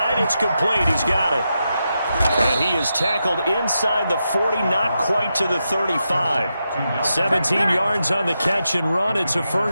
It's complete. He's got it. And he is tackled inside the 40, not quite to the 35. 17 yards on the catch and run. It's a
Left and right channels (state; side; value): inverted; both; correlation -0.87